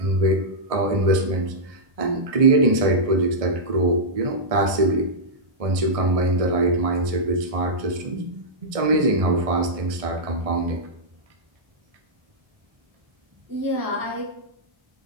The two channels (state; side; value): late; left; 1.6 ms